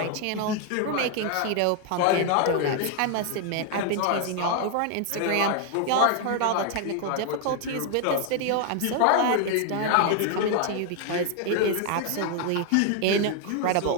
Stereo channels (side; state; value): both; different; correlation 0.00